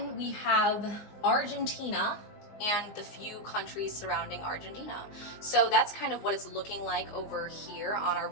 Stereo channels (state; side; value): late; right; 19 ms